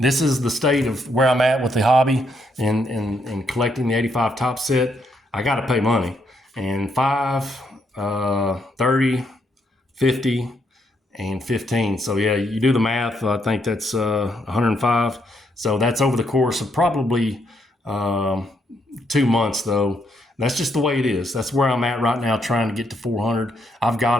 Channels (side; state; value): both; normal; correlation 0.75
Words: is the state of where I'm at with the hobby and collecting the 85 top set. I got to pay money. And 5, 30, 50, and 15. So yeah, you do the math. I think that's 105. So that's over the course of probably 2 months, though. That's just the way it is. That's where I'm at right now, trying to get to 400. I've got